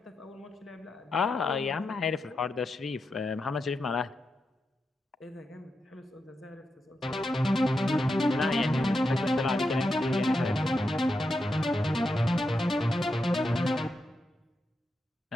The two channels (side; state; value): both; normal; correlation 0.86